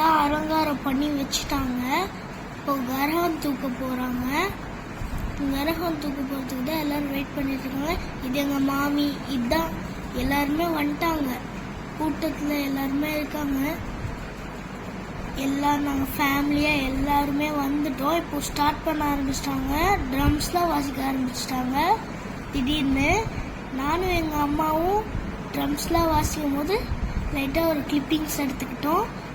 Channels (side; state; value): both; identical; correlation 1.00